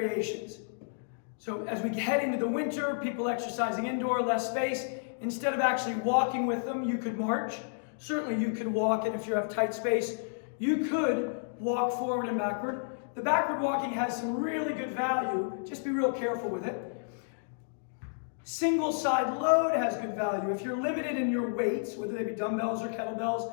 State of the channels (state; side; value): silent; right; digital silence